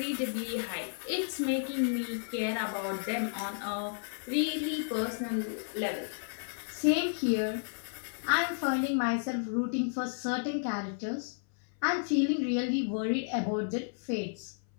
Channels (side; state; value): right; silent; 56 dB below the other